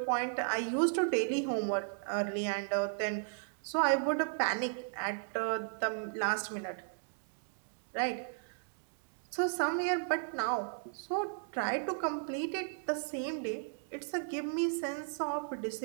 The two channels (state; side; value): silent; left; digital silence